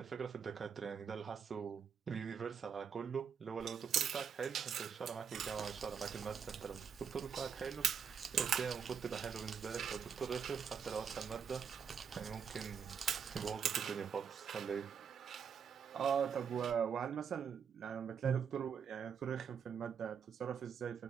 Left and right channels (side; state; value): left; quieter; 7.2 dB